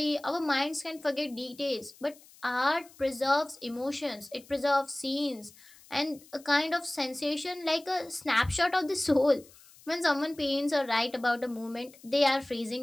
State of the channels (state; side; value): noise; left; hiss, 24 dB below the sound